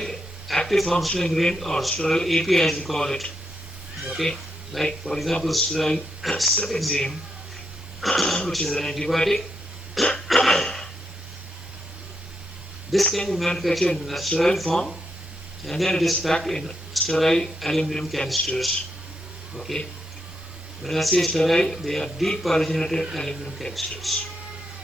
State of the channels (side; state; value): both; normal; correlation 0.81